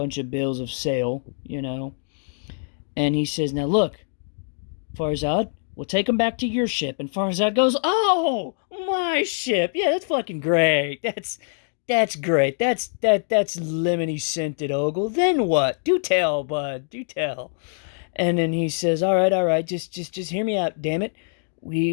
of bills of sale, and he says, now look, Farzad, we'll take him back to your ship. And Farzad goes, oh, my ship. Yeah, that's fucking great. That's great. That's lemony scented, Ogul. Then what? Do tell, bud. Do tell. And then he says, all right, just hear me out, damn it.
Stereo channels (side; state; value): right; silent; digital silence